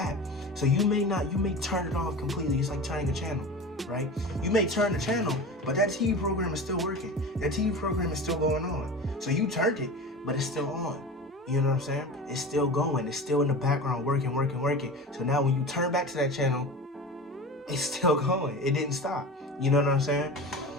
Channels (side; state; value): both; normal; correlation 0.32